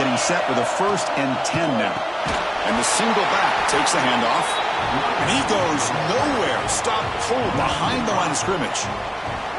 set with a 1st and 10 now. And the single back takes the handoff. And he goes nowhere. Stop pulled behind the line of scrimmage.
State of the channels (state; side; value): identical; both; correlation 1.00